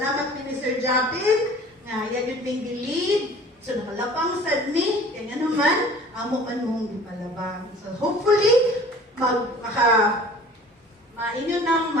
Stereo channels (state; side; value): normal; both; correlation 0.46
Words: ni Sir Japin nga yan yun may lead. So, nakalapang sad ni, kaya naman, amo man mong gipalabang. So, hopefully, mainyo nang